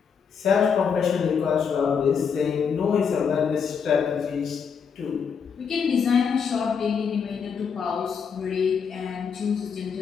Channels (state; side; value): quieter; right; 6.5 dB